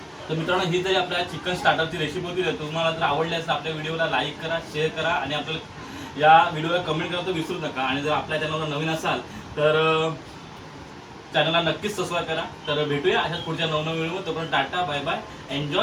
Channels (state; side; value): identical; both; correlation 1.00